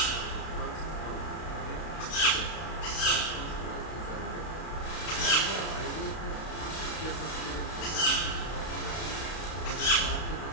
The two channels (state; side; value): late; right; 32 ms